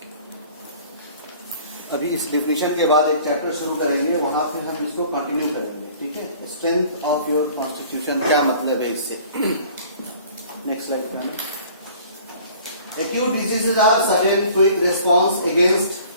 अभी इस definition के बाद एक chapter शुरू करेंगे, वहां फिर हम इसको कंटिन्यू करेंगे. ठीक है. स्ट्रेंथ ऑफ योर कॉन्स्टिट्यूशन क्या मतलब है इससे. नेक्स्ट स्लाइड पे. Acute diseases are sudden quick response against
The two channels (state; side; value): inverted; both; correlation -0.50